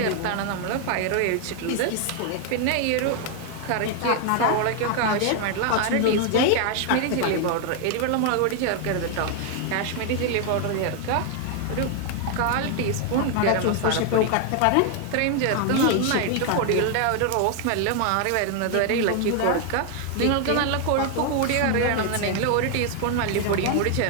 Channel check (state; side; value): different; both; correlation 0.00